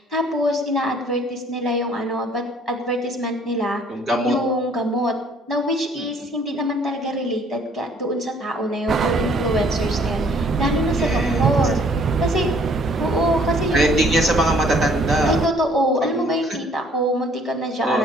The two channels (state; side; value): normal; both; correlation 0.59